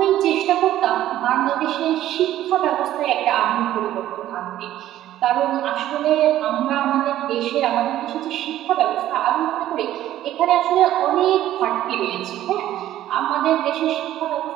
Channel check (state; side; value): quieter; left; 13.1 dB